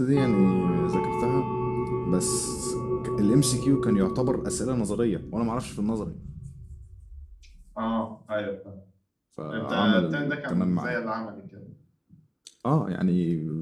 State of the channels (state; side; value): identical; both; correlation 1.00